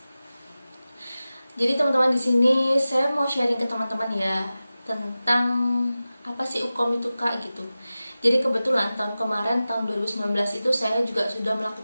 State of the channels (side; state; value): both; inverted; correlation -0.95